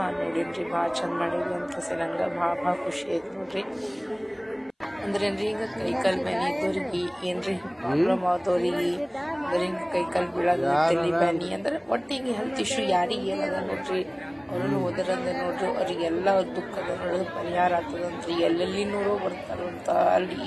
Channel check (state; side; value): identical; both; correlation 1.00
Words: ನೋಡಿನ್ರಿ. ಭಾಳ ಚಂದ ಮಾಡಿದ್ವಿ ಅಂತ ಕೇಸಿ ನಂಗೆ ಭಾಳ ಖುಷಿ ಆಯ್ತು ನೋಡ್ರಿ. ಅಂದ್ರೇನ್ರಿ ಈಗ ಕೈಕಾಲ್ ಬ್ಯಾನಿ ಇದ್ದವ್ರಿಗೆ ಏನ್ರಿ ಪ್ರಾಬ್ಲಮ್ ಆದವ್ರಿಗೆ ಅಂದ್ರೆ ಹಿಂಗೆ ಕೈಕಾಲ್ ಬೀಳೋದು ತಲೆ ಬ್ಯಾನಿ ಅಂದ್ರೆ ಒಟ್ಟು ಹಿಂಗೆ ಹೆಲ್ತ್ ಇಶ್ಯೂ ಯಾರಿಗೆ ಏನದ ನೋಡ್ರಿ ಅವ್ರನ್ನು ಹೋದ್ರಂದ್ರೆ ನೋಡ್ರಿ ಅವ್ರಿಗೆಲ್ಲ ಅವ್ರ ದುಃಖದ ನೋಡೋದು ಪರಿಹಾರ ಆಗ್ತದಂತ್ರಿ. ಎಲ್ಲೆಲ್ಲಿ ನೋಡೋ ಬರ್ತಾರಂತ ಅಲ್ಲಿ